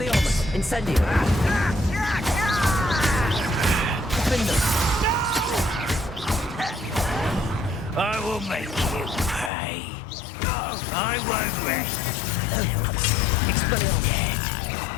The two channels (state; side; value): drops out; right; at 9.5 s